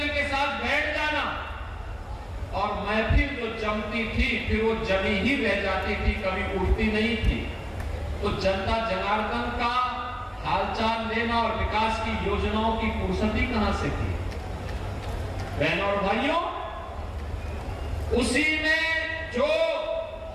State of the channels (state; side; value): identical; both; correlation 1.00